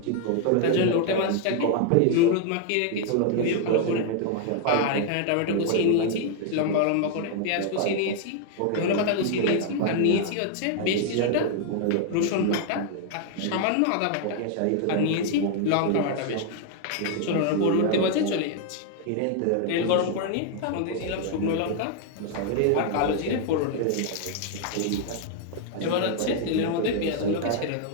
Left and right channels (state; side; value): different; both; correlation 0.00